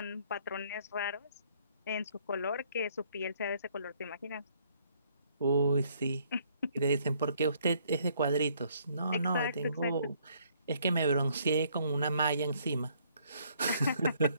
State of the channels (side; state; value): both; inverted; correlation -0.65